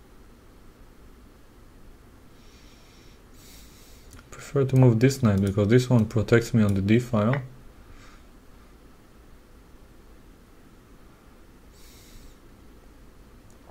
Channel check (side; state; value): both; identical; correlation 1.00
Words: I prefer to move this knight because this one protects me on the d file.